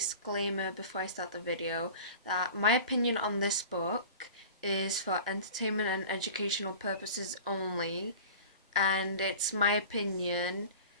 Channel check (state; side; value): inverted; both; correlation -0.39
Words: before I start the video that my opinion on this book is for entertainment and educational purposes only, and it's my opinion.